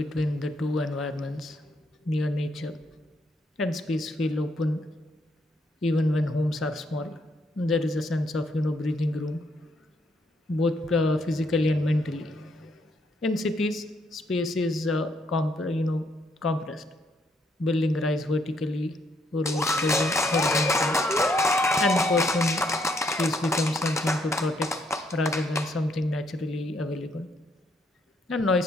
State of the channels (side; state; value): both; normal; correlation 0.73